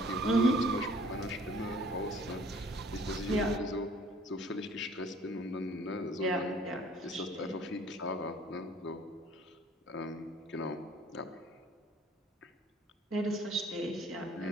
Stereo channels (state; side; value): normal; both; correlation 0.55